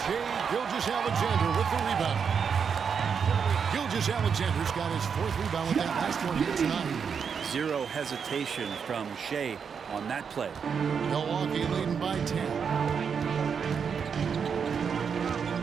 Shai Gilgeous-Alexander with the rebound. Gilgeous-Alexander's got his 4th rebound with that last one here tonight. Zero hesitation from Shai on that play. Milwaukee leading by 10.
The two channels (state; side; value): quieter; left; 6.6 dB